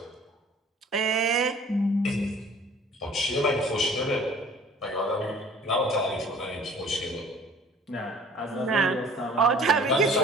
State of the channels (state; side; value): normal; both; correlation 0.50